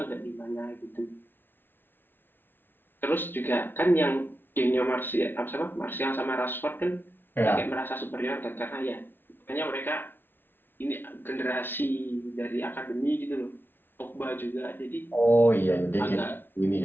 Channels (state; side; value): late; right; 0.099 ms